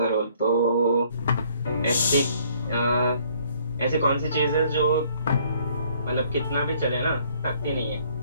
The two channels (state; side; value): inverted; both; correlation -0.62